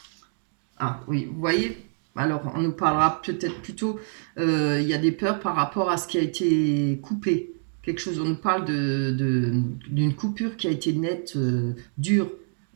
Ah oui, vous voyez, alors on nous parlera peut-être plutôt, il y a des peurs par rapport à ce qui a été coupé. Quelque chose, on nous parle d'une coupure qui a été nette, dure,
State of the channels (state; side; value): silent; left; digital silence